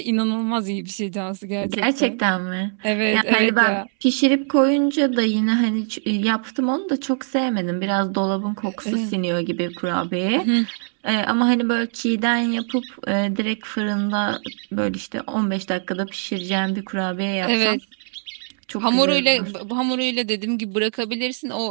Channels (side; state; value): left; silent; 64 dB below the other